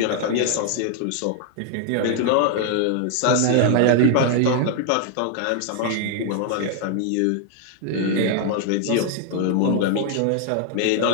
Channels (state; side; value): different; both; correlation 0.00